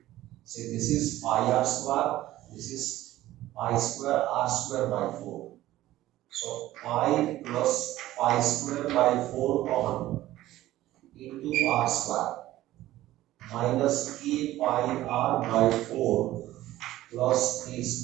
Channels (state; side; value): quieter; left; 15.2 dB